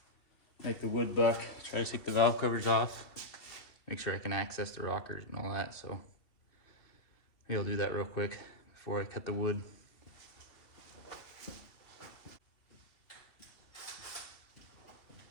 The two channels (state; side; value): late; right; 2.7 ms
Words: make the wood buck. Try to take the valve covers off. Make sure I can access the rockers and all that. So maybe I'll do that real quick before I cut the wood.